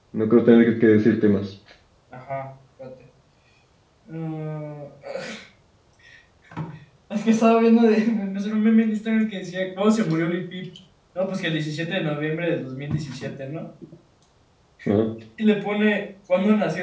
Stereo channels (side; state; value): both; identical; correlation 1.00